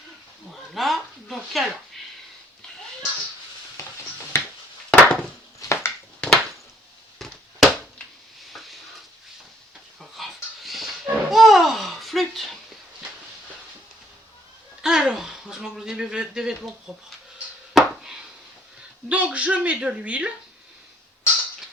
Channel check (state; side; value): normal; both; correlation 0.63